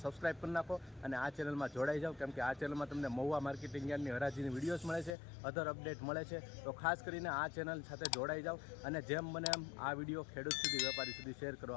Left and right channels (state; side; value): drops out; right; at 5.2 s